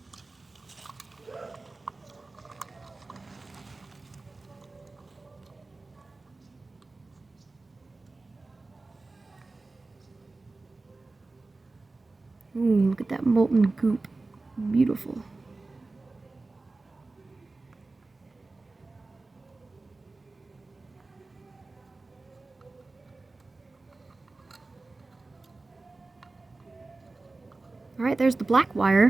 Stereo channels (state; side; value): quieter; left; 3.4 dB